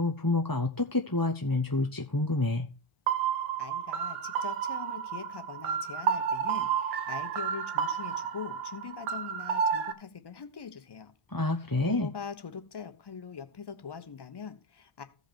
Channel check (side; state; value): right; late; 1.1 ms